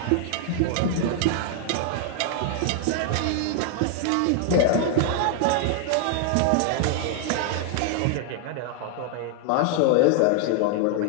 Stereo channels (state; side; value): different; both; correlation 0.00